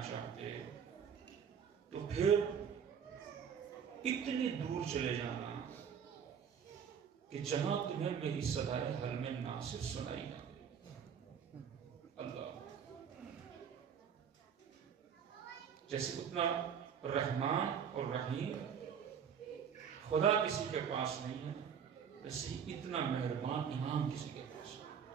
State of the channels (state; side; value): quieter; left; 7.6 dB